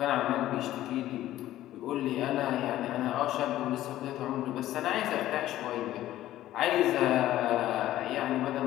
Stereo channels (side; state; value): right; quieter; 14.0 dB